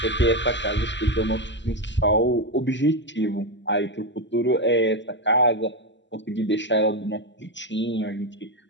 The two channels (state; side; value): late; right; 0.53 ms